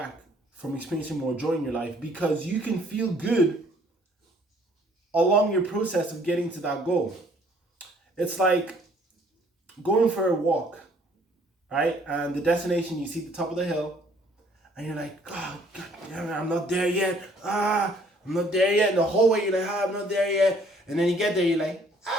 from experiencing more joy in your life, because you can feel good along your process of getting to that goal. It's like going for a walk, right? And the destination, you see the top of the hill, and you're like, God damn it, I'm not there yet. I'm not there yet. And the whole way you're like, I'm not there yet. And then you get there, you're like,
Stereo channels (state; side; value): normal; both; correlation 0.61